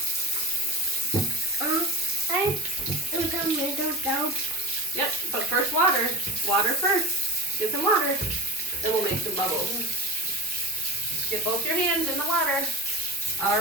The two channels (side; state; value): both; normal; correlation 0.28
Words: I do some little soap. Yep, but first water. Water first. Get some water. Then we'll make some bubbles. Get both your hands in the water.